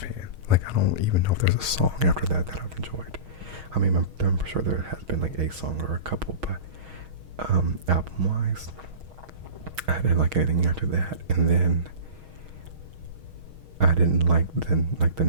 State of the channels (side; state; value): left; late; 6.4 ms